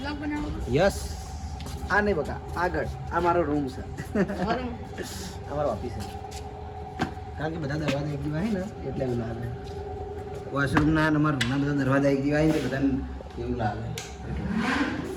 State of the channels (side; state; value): both; identical; correlation 1.00